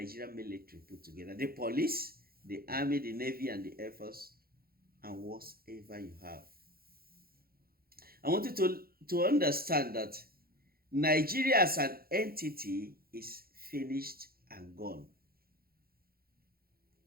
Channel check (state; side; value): late; left; 0.44 ms